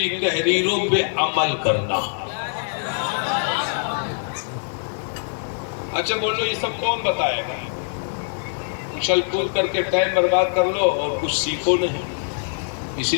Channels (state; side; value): silent; right; digital silence